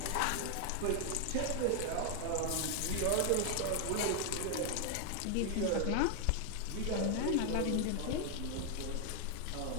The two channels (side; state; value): both; different; correlation 0.00